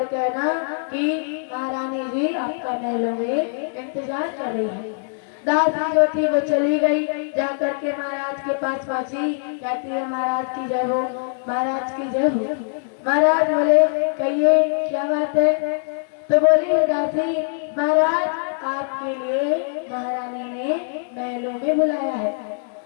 कहना कि महारानी जी आपका महलों में इंतजार कर रही है। दासी जो थी वो चली गई, जाकर के महाराज के पास पहुंची, कहती है, महाराज की जय हो, महाराज की जय हो। महाराज बोले, कहिए क्या बात है। तो बोली दासी, महाराज आपके लिए महारानी ने महलों में बुलाया है।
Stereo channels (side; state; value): right; silent; digital silence